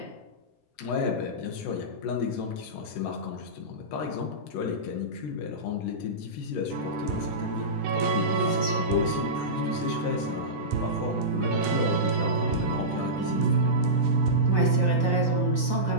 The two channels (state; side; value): normal; both; correlation -0.16